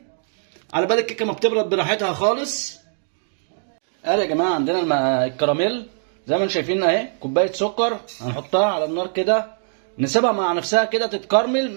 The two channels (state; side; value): silent; left; digital silence